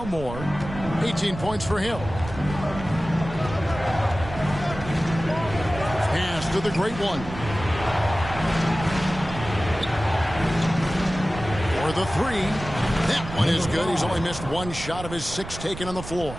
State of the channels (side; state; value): right; noise; rumble, 11 dB below the sound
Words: Moore. 18 points for him. Pass to the great one. For the 3. That one is good. He's only missed 1 shot of his 6 taken on the floor.